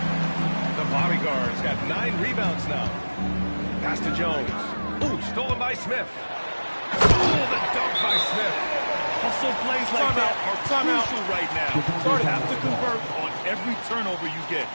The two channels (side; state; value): both; inverted; correlation -1.00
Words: The bodyguard's got 9 rebounds now. Pass to Jones. Ooh, stolen by Smith. Oh, the dunk by Smith. Hustle plays like that are crucial right now. You have to convert on every turnover you get.